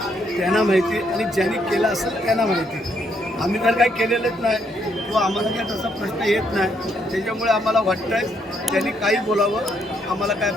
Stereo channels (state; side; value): normal; both; correlation 0.73